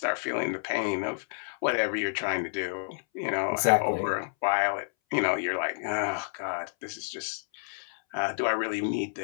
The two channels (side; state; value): right; silent; 58 dB below the other